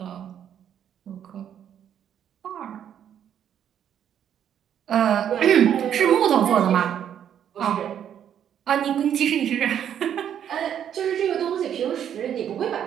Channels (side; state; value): left; quieter; 9.4 dB